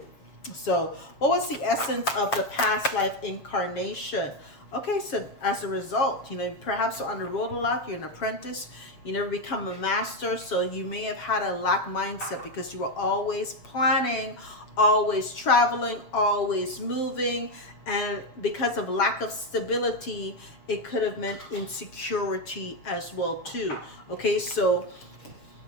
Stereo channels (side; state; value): right; late; 7.2 ms